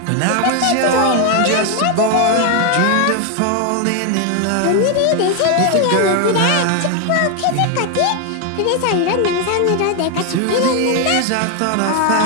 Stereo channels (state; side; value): different; both; correlation 0.01